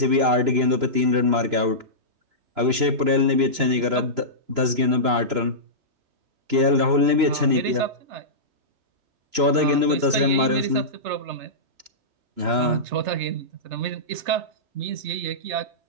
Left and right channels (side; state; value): left; late; 3.0 ms